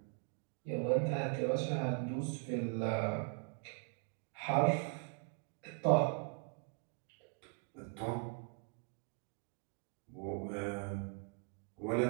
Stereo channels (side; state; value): left; quieter; 37.5 dB